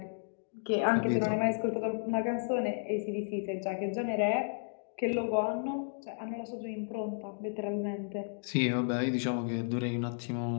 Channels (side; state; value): right; silent; digital silence